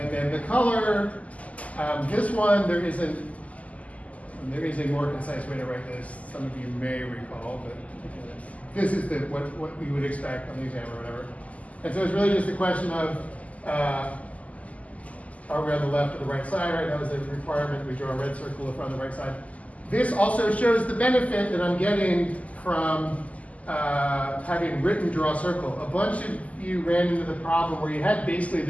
then the color, this one, there is a more concise way to write this. Some of you may recall, but this is what we would expect on the exam or whatever. And so it's really just a question of, are we on the left or the right side, right? That was a requirement. We draw a red circle if we're on the right side. This also shows the benefit that I'm getting from having written draw circle. A bunch of you ran into the problem where you had basically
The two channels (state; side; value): late; right; 0.071 ms